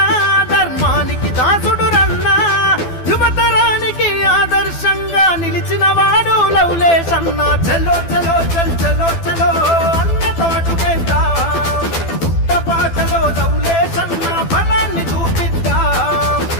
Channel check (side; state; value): right; late; 12 ms